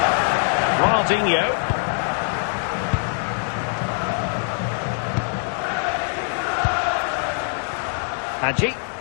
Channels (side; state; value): right; silent; 63 dB below the other